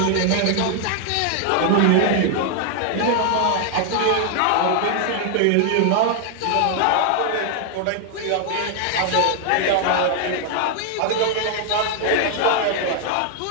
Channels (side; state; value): both; different; correlation 0.00